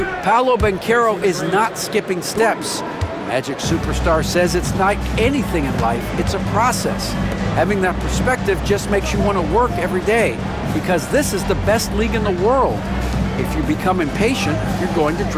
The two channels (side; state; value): both; identical; correlation 1.00